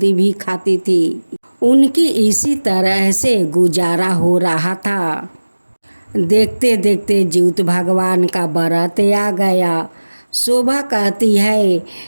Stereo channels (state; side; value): inverted; both; correlation -1.00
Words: खाती थी। उनकी इसी तरह से गुजारा हो रहा था। देखते देखते जीवित भगवान का व्रत आ गया। शोभा कहती है